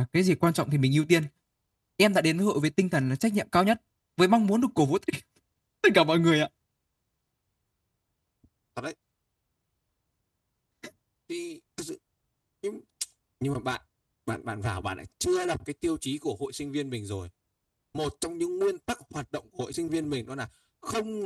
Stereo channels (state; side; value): identical; both; correlation 1.00